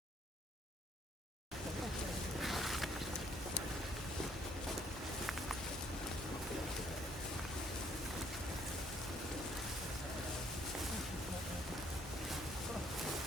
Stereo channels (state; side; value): normal; both; correlation 0.66